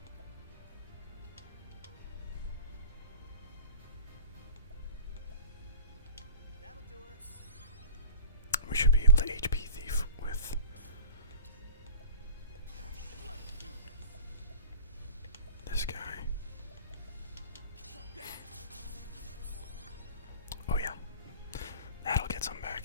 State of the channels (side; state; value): both; inverted; correlation -0.40